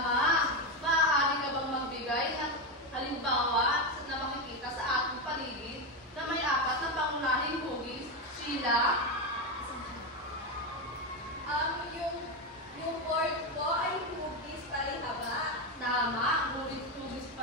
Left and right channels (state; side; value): normal; both; correlation 0.11